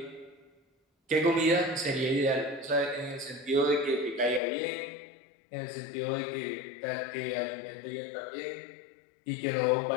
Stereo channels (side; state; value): right; drops out; at 4.4 s